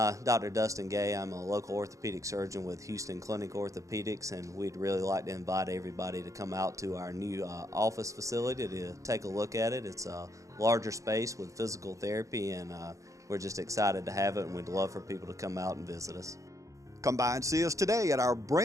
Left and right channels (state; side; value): late; left; 0.15 ms